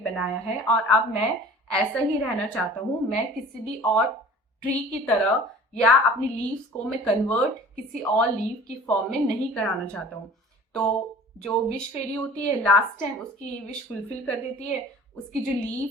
बनाया है, और अब मैं ऐसा ही रहना चाहता हूँ। मैं किसी भी और ट्री की तरह या अपनी लीव्स को मैं कन्वर्ट किसी और लीव की फॉर्म में नहीं कराना चाहता हूँ। तो जो विश फेरी होती है लास्ट टाइम उसकी विश फुलफिल कर देती है, उसकी जो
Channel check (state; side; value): normal; both; correlation 0.45